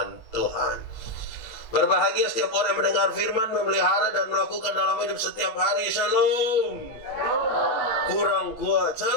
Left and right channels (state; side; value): late; right; 8.2 ms